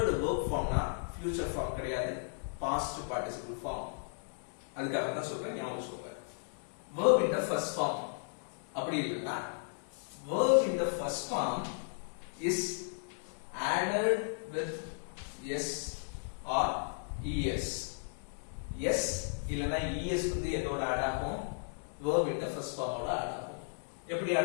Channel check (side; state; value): right; silent; digital silence